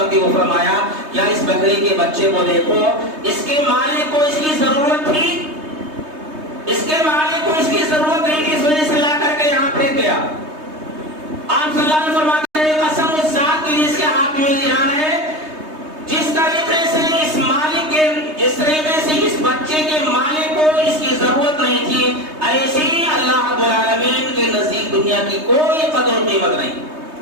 کے وہ فرمایا کیا اس بکری کے بچے کو دیکھو، اس کے مالک کو اس کی ضرورت تھی، اس کے مالک کو اس کی ضرورت نہیں تھی، اس وجہ سے لا کر کے یہاں پھینک گیا. آپ صلی اللہ علیہ وسلم فرماتے ہیں قسم اس ذات کی جس کے ہاتھ میں جان ہے، جس طریقے سے اس مالک کے، جس طریقے سے اس بچے کے مالک کو اس کی ضرورت نہیں تھی، ایسی اللہ رب العالمین کے نزدیک دنیا کی کوئی قدر و قیمت نہیں.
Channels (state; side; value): late; left; 3.2 ms